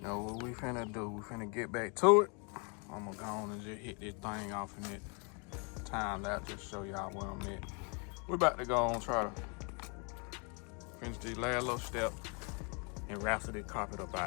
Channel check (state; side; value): quieter; right; 35.3 dB